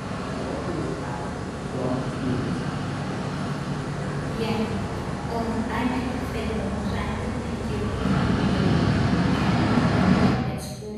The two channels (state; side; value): identical; both; correlation 1.00